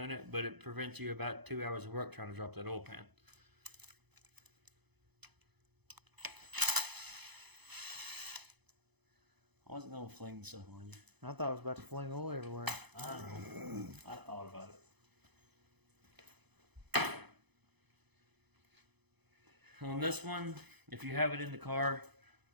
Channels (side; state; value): left; late; 0.99 ms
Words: it, but it prevents you about 2 hours of work trying to drop that oil pan. I wasn't gonna fling stuff on you. I thought I was about to fling oil everywhere. I know. I thought about it. On this one, if you have it in the car,